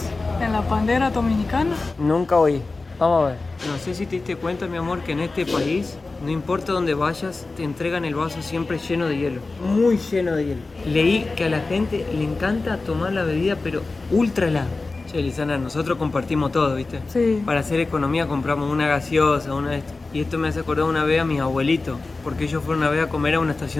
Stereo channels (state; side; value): quieter; right; 3.6 dB